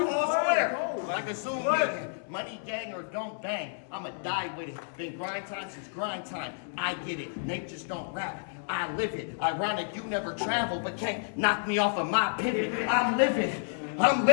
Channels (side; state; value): right; silent; digital silence